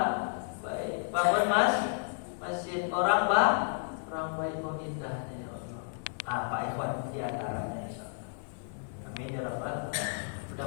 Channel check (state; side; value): silent; right; digital silence